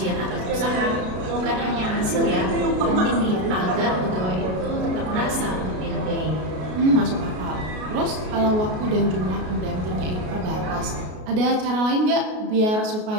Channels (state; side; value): late; left; 33 ms